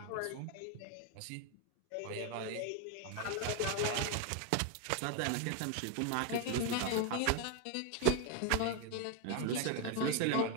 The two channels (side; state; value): both; different; correlation 0.01